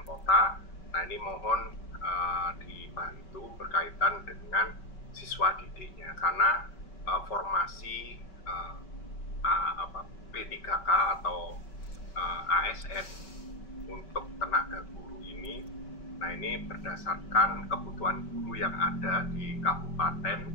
kota. Nah, ini mohon dibantu berkaitan dengan siswa didiknya, karena formasi P3K atau ASN untuk tenaga guru ini, nah ini berdasarkan kebutuhan guru yang ada di kabupaten,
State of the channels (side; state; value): right; late; 5.2 ms